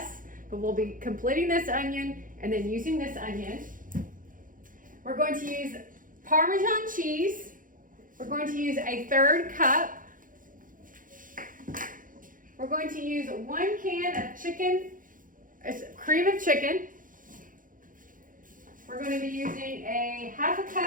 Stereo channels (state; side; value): late; left; 0.39 ms